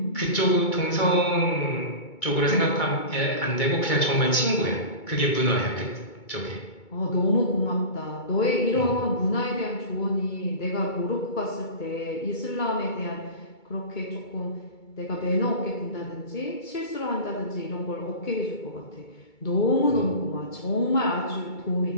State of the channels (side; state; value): right; late; 2.2 ms